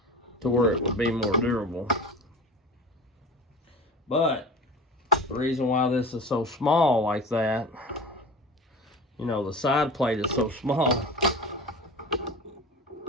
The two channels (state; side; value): normal; both; correlation 0.35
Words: to where it would be more durable. But the reason why this is so small like that, you know, the side plate is so small,